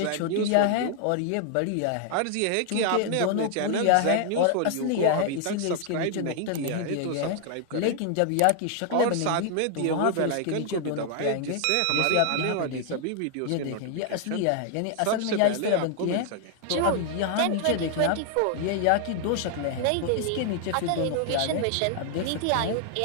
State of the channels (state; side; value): different; both; correlation 0.00